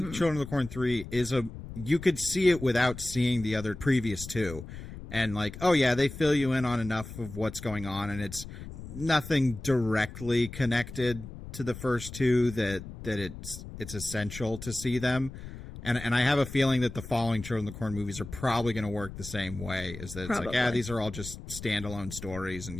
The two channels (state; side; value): noise; left; rumble, 12 dB below the sound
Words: Children of the Corn 3 you could see it without seeing the other previous two. And like, oh yeah, they fill you in on enough of what's going on, and it's nothing directly connected to the first two that it's essential to see them. And I have a feeling that the following Children of the Corn movies are probably going to work the same way. Is that it's Probably. like, yeah, these are all just standalone stories, and